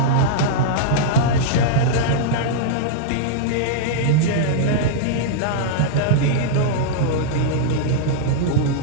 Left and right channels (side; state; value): both; different; correlation -0.02